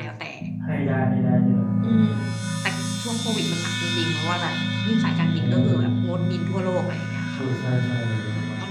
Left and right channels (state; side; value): identical; both; correlation 1.00